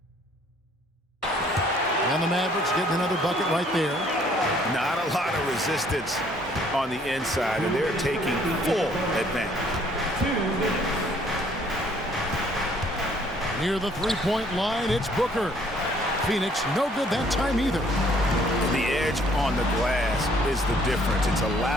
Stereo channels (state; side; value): normal; both; correlation 0.61